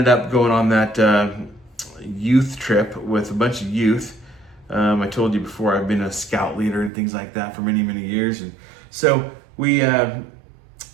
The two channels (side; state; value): left; drops out; at 6.9 s